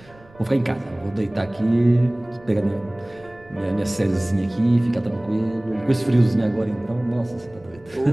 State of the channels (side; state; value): right; noise; rumble, 26 dB below the sound